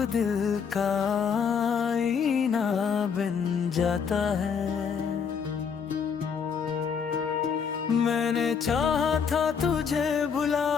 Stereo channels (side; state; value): right; quieter; 6.6 dB